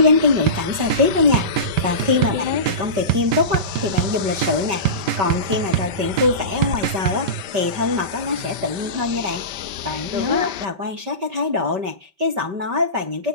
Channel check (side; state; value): left; late; 5.2 ms